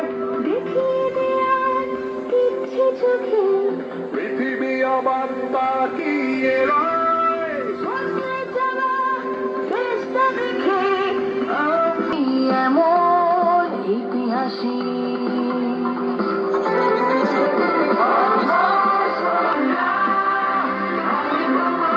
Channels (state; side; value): identical; both; correlation 1.00